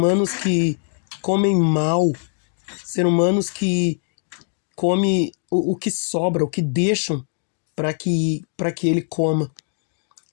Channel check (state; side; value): silent; right; 57 dB below the other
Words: que comem mal, ser humanos que comem o que sobra, o que deixam para que ele coma.